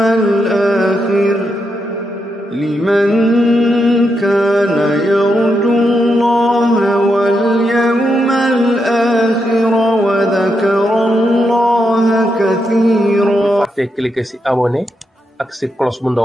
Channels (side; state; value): both; normal; correlation 0.83